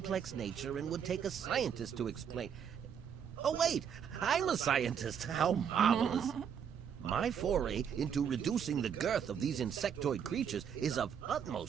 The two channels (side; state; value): left; quieter; 7.9 dB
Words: nature and would take a scientist to explain. Oh, wait, I'm a scientist. How marvelous. My foray into reducing the girth of these insectoid creatures is of